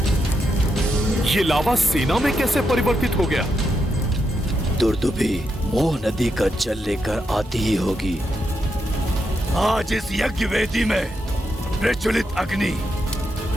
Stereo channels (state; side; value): normal; both; correlation 0.83